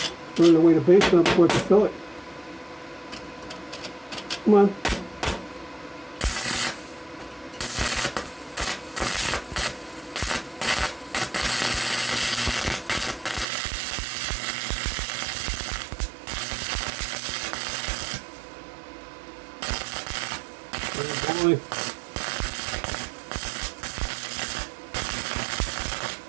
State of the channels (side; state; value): left; drops out; at 13.5 s